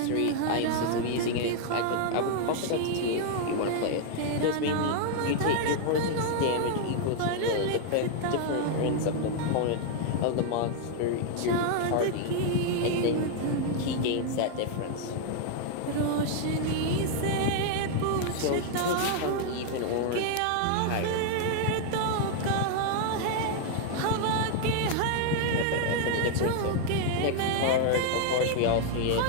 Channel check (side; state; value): both; different; correlation 0.00